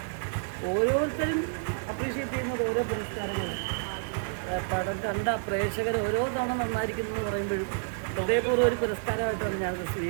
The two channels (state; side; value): silent; left; 58 dB below the other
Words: ഓരോരുത്തരും അപ്രീഷിയേറ്റ് ചെയ്യുന്നത് ഓരോ പുരസ്കാരങ്ങളാണ്. പടം കണ്ട പ്രേക്ഷകർ ഓരോ തവണ നന്നായിരിക്കുന്നു എന്ന് പറയുമ്പോഴും ഹൃദയപൂർവ്വം ഒരു പുരസ്കാരമായിട്ടാണ് ഞാനത്